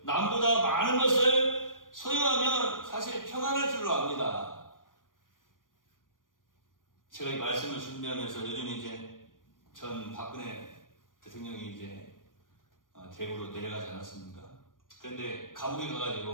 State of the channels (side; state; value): right; late; 0.89 ms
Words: 남보다 많은 것을 소유하면 사실 평안할 줄로 압니다. 제가 이 말씀을 준비하면서 요즘 이제 전 박근혜 대통령이 이제 대구로 내려가지 않았습니까? 그런데 감옥에